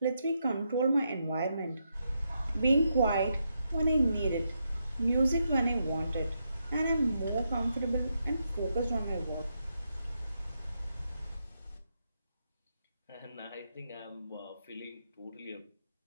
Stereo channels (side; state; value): both; inverted; correlation -0.82